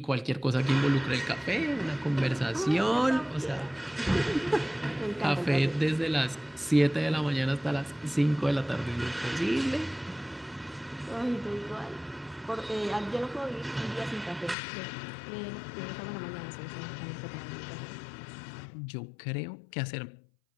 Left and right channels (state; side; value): drops out; right; at 14.6 s